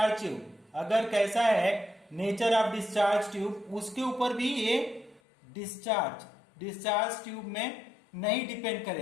ट्यूब, अगर कैसा है नेचर ऑफ डिस्चार्ज ट्यूब, उसके ऊपर भी ये डिस्चार्ज ट्यूब में नहीं डिपेंड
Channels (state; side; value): drops out; right; at 5.2 s